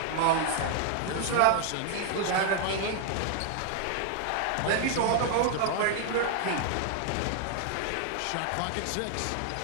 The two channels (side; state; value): both; different; correlation 0.00